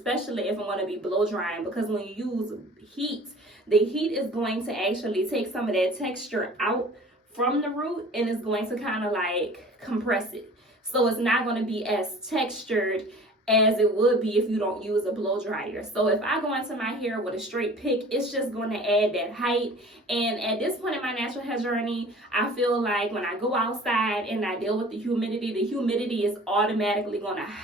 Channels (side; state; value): both; normal; correlation 0.45